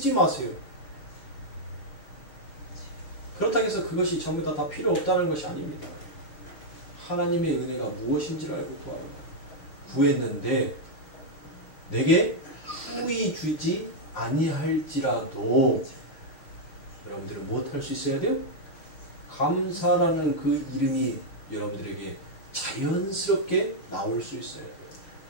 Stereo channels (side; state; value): right; late; 6.5 ms